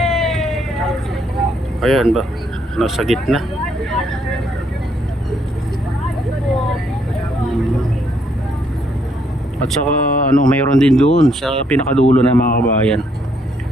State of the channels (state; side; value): normal; both; correlation 0.71